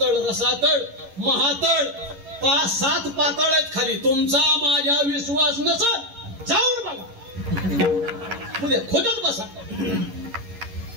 रसातळ महातळ 5-7 पाताळ आहेत खाली. तुमचा माझ्या विश्वास नसल जाऊन बघा उद्या खोदत बसा.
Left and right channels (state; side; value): late; left; 11 ms